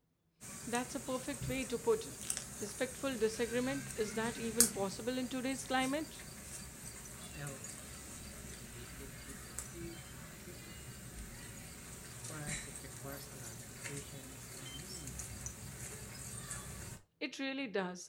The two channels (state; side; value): identical; both; correlation 1.00